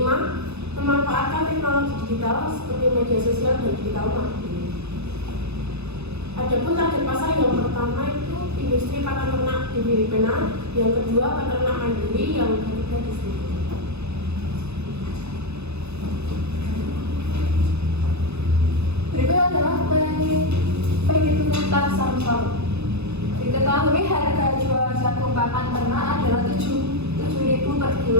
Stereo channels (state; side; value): late; left; 0.80 ms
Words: memanfaatkan teknologi digital seperti media sosial dan digital marketing. Adapun target pasar yang pertama itu industri pakan ternak di Filipina, yang kedua peternak mandiri, yang ketiga distributor. Berikut adalah penghitungan Samsung. Diketahui harga jual jagung pakan ternak adalah 7.000 per